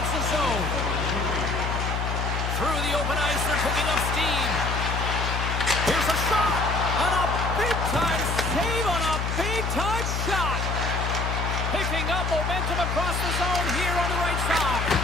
zone. Through the open ice, they're picking up steam. Here's a shot. On a big-time save on a big-time shot. Picking up momentum across the zone here on the right side.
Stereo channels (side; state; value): left; noise; hum, 1 dB below the sound